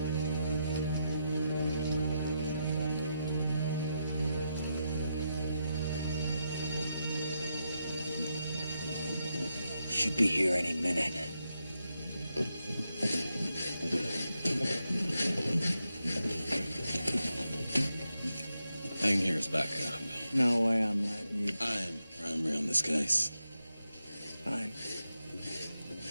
Should be here any minute. Hang here as backup. No way I'm letting you. I am primary on this case. Fine.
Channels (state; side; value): inverted; both; correlation -0.84